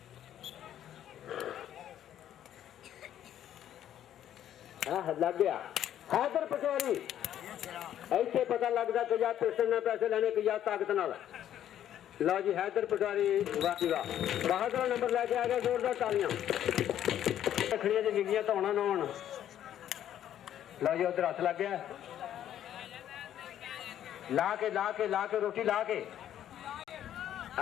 लग गया हैदर पटवारी ऐसे पता लगता कि या पेशन ने पैसे लेने की या ताकत नाल। लो जी हैदर पटवारी वाह बहादुर नंबर लेके आ गया, जोरदार तालियां। रखड़ियां जी गिगियां तो होना ना होना। लो जी उधर हथ लग गया, ला के रोटी ला के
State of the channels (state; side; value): quieter; right; 11.0 dB